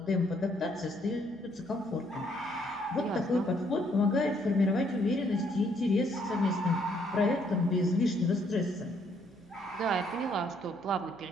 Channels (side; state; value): left; noise; hum, 29 dB below the sound